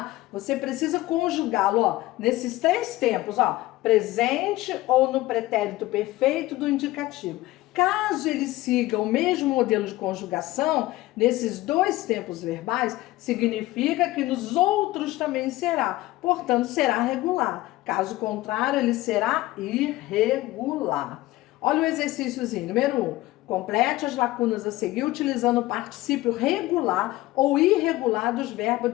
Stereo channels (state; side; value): quieter; right; 18.0 dB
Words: você precisa conjugá-lo, ó, nesses 3 tempos, ó, presente ou no pretérito perfeito do indicativo. Caso ele siga o mesmo modelo de conjugação, nesses 2 tempos verbais, significa que nos outros também será. Portanto, será regular. Caso contrário, ele será irregular. Olha o exercíciozinho. Número 1. Complete as lacunas a seguir utilizando o particípio regular ou irregular dos